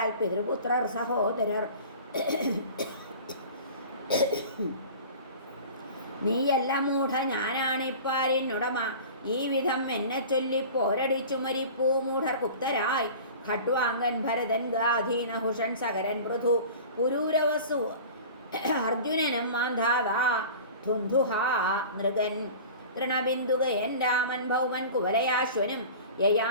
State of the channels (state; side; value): inverted; both; correlation -0.39